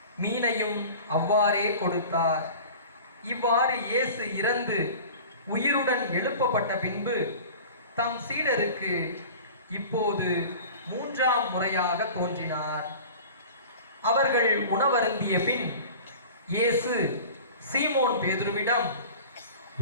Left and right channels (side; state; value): both; inverted; correlation -0.39